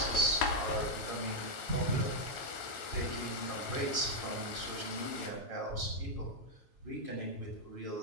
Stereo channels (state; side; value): late; right; 7.2 ms